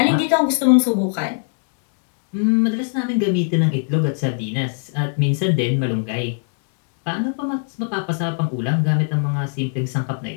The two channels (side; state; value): right; silent; 65 dB below the other